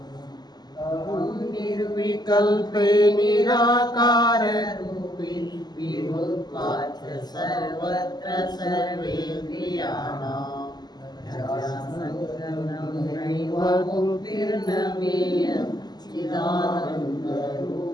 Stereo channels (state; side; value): late; right; 0.20 ms